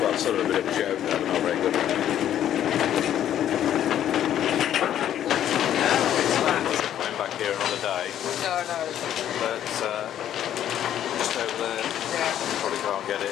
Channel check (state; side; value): quieter; right; 10.9 dB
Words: sort of a bit of a joke there, but not very good. Coming back here another day. No. But just over there, probably can't get it